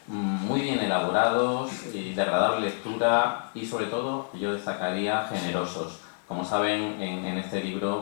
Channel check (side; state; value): right; silent; digital silence